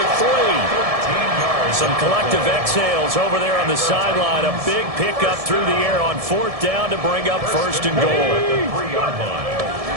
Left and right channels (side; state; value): left; late; 1.7 ms